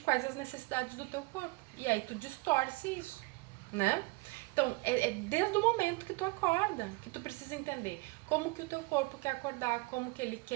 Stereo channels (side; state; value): left; quieter; 25.3 dB